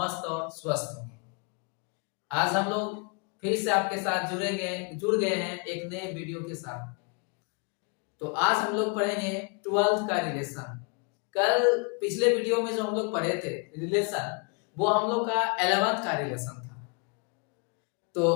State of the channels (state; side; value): quieter; right; 34.6 dB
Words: और स्वस्थ होंगे। आज हम लोग फिर से आपके साथ जुड़ गए हैं एक नए वीडियो के साथ। तो आज हम लोग पढ़ेंगे 12th का रिलेशन। कल पिछले वीडियो में जो हम लोग पढ़े थे रिलेशन, वो हम लोग का 11th का रिलेशन था। तो